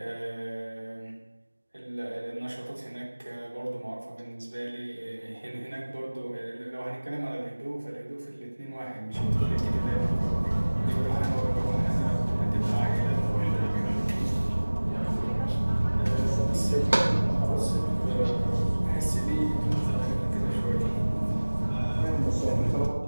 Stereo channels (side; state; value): both; inverted; correlation -1.00